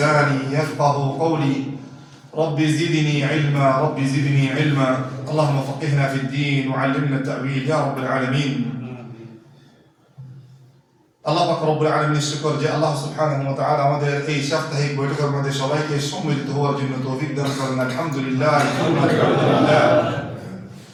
يفقه قولي. رب زدني علما، رب زدني علما. اللهم فقهنا في الدين وعلمنا التأويل يا رب العالمين. আল্লাহ পাক রব্বুল আলামিনের শুকর যে আল্লাহ সুবহানাহু ওয়া তাআলা আমাদের এই সাপ্তাহিক বৈঠকের মধ্যে সবাইকে সম্মিলিত হওয়ার জন্য তৌফিক দান করেন। আলহামদুলিল্লাহ, আলহামদুলিল্লাহ।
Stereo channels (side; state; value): both; identical; correlation 1.00